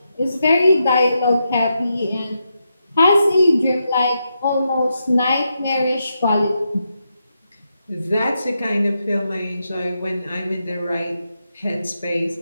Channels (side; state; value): both; inverted; correlation -0.84